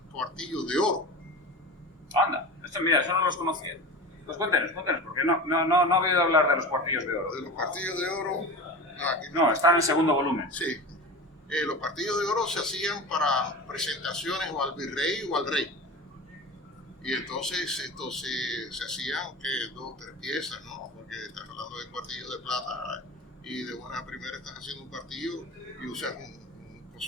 cuartillos de oro. Anda, mira, eso no los conocía. Pues cuéntenos, porque no he oído hablar de los cuartillos de oro. De los cuartillos de oro... No, están en el segundo volumen. Sí. Los cuartillos de oro se hacían para presentaciones o al virrey o al rey. Y entonces estos se hacían 2 o 3 piezas, ¿no? Porque estás hablando de cuartillos de plata y de buena primera estás haciendo un cuartillo y usas un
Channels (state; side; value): normal; both; correlation 0.31